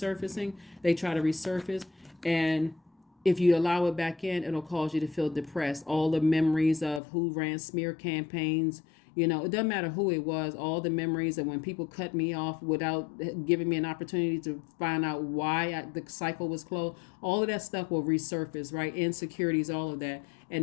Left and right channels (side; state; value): right; drops out; at 7.0 s